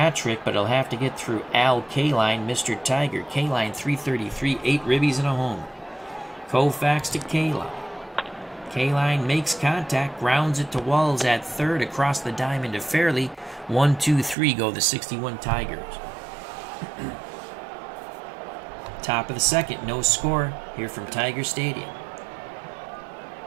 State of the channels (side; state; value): left; drops out; at 14.4 s